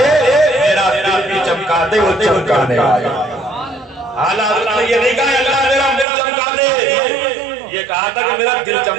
میرا دل بھی چمکا دے وہ چمکانے والے. اعلیٰ حضرت نے یہ نہیں کہا اللہ میرا دل چمکا دے, یہ کہا تھا کہ میرا دل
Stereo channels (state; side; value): drops out; left; at 6.1 s